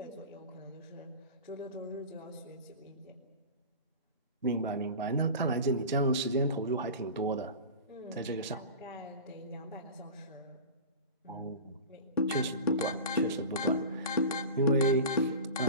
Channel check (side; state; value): both; inverted; correlation -0.33